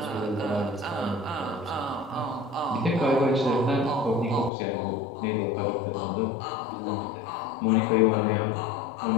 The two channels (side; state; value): right; drops out; at 4.5 s